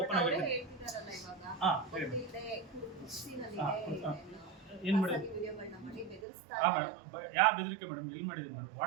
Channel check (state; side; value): drops out; left; at 6.2 s